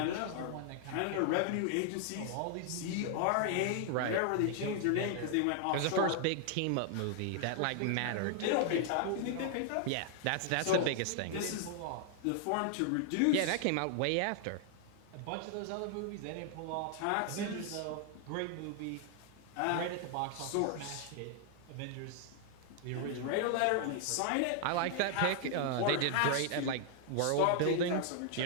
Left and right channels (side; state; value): both; different; correlation 0.00